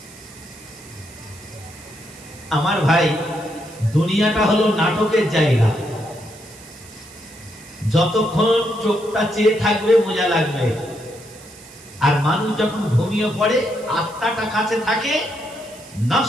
আমার ভাই, দুনিয়াটা হলো নাটকের জায়গা। যতক্ষণ চোখটা চেয়ে থাকবে মজা লাগবে, আর মানুষ যখন ঘুমিয়ে পড়ে আত্মাটা কাছে থাকে,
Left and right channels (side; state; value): right; noise; hiss, 20 dB below the sound